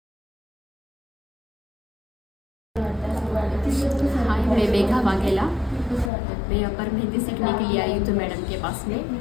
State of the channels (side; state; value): right; drops out; at 6.1 s